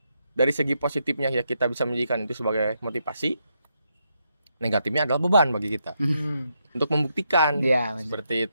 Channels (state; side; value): inverted; both; correlation -0.80